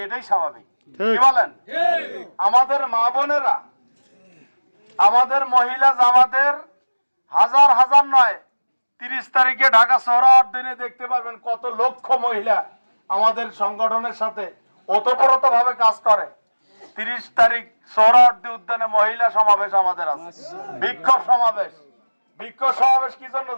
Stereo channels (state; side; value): inverted; both; correlation -1.00